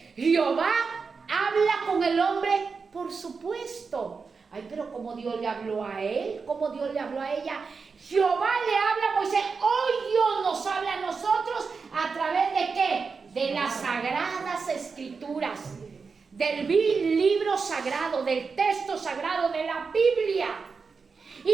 Jehová habla con el hombre, por supuesto. Ay, pero ¿cómo Dios le habló a él? ¿Cómo Dios le habló a ella? Jehová le habla a Moisés. Hoy Dios nos habla a nosotros a través de ¿qué? De las sagradas escrituras, del libro sagrado, del texto sagrado, de la Biblia.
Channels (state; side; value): quieter; left; 5.0 dB